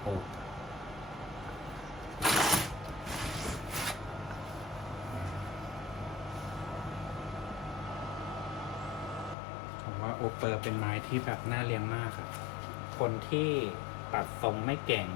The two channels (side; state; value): right; drops out; at 9.3 s